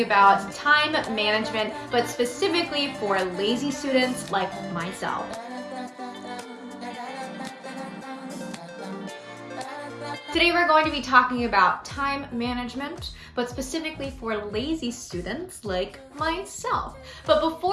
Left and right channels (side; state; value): both; identical; correlation 1.00